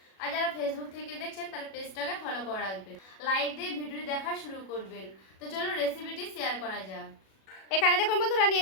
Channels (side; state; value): right; late; 37 ms